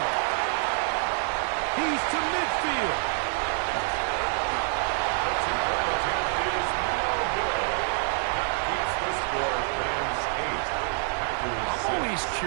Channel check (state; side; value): silent; left; 56 dB below the other